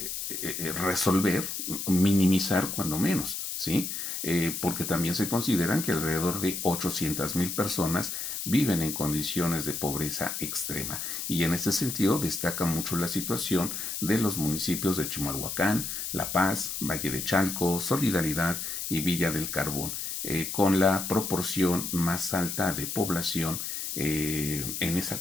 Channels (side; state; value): left; noise; hiss, 4 dB below the sound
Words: resolver, minimizar cuando menos, ¿sí? Porque también se consideran que alrededor de 800,000 personas viven en condiciones de pobreza extrema. Y en este sentido destaca mucho la situación de los municipios de Chimalhuacán, La Paz, Valle de Chalco, Solidaridad y Villa del Carbón, con la proporción más alta de población en esa